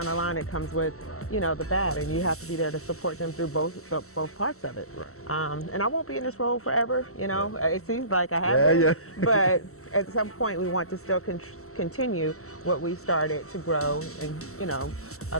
the line it comes with the bad, and you have to be there to support them through both parts of it. And I won't be in this role forever. It seems like I have been, but at some point we want to still continue what we started to grow, and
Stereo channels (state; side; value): late; right; 0.63 ms